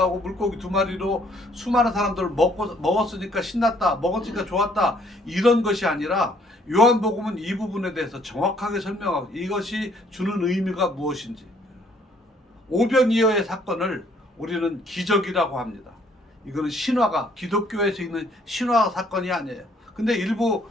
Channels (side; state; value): both; normal; correlation 0.64